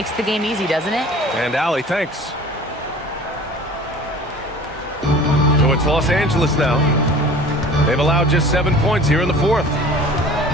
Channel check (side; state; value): both; normal; correlation 0.44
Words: the game easy, doesn't it? And Allie, thanks. So it's Los Angeles now. They've allowed just 7 points here in the fourth.